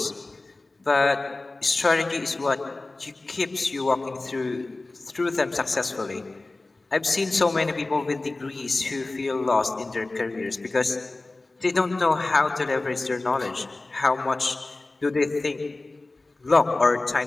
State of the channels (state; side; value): quieter; right; 3.1 dB